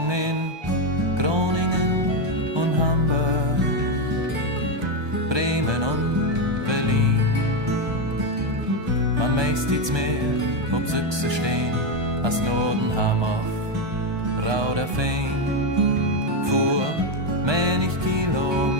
in Groningen und Hamburg, Bremen und Berlin. Man meist iets mehr, ob Süchse stehen, als Nordenham auf Rauderfehn. Fuhr menig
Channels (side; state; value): left; late; 1.2 ms